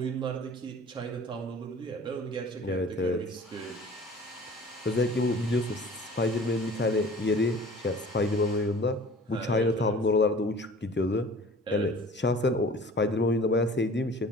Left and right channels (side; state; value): both; normal; correlation 0.46